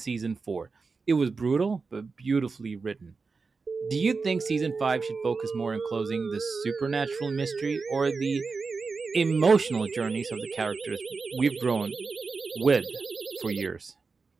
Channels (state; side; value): quieter; left; 4.5 dB